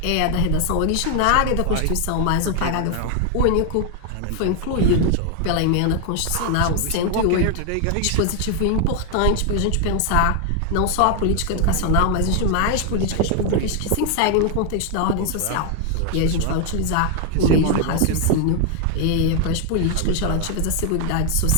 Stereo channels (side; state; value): both; different; correlation 0.00